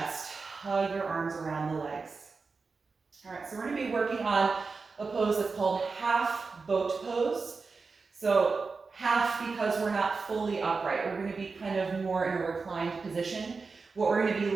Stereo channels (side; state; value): left; quieter; 4.5 dB